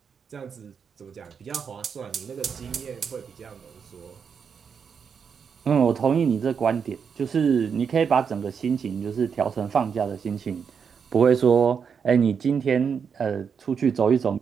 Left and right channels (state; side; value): quieter; left; 6.6 dB